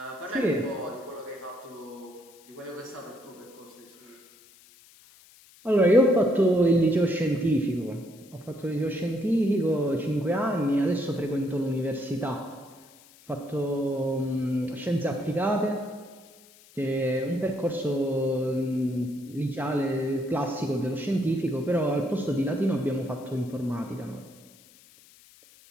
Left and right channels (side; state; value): left; noise; hiss, 25 dB below the sound